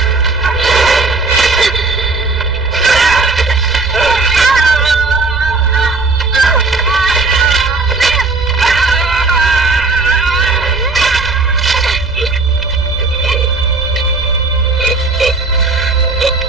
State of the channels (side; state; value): left; quieter; 3.7 dB